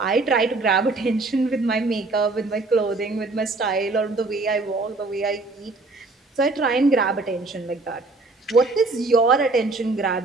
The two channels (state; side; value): quieter; left; 3.4 dB